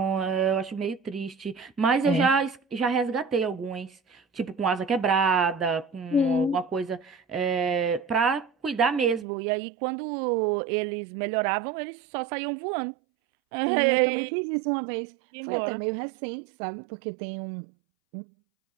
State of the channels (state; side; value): drops out; left; at 9.2 s